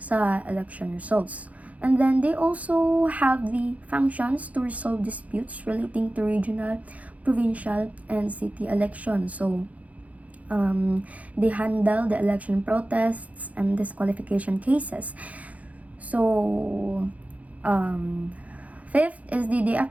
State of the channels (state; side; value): late; left; 0.069 ms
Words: election results. And then, they also have the functions to resolve disputes relating to regional, provincial, and city elections. So, they handle the election protests and disqualification cases. So, fifth is they